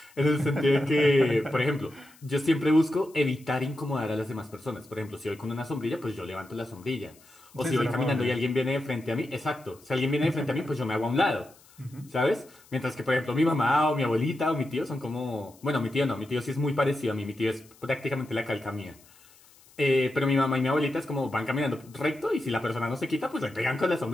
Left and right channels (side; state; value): left; noise; hiss, 27 dB below the sound